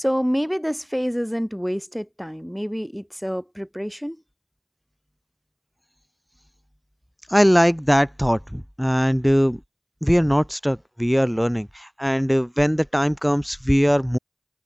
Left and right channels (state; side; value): identical; both; correlation 1.00